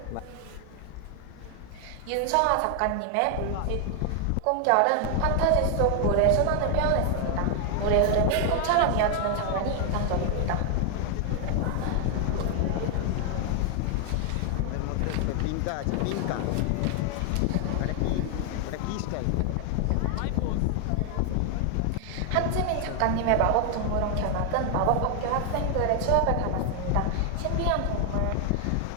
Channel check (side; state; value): both; different; correlation 0.00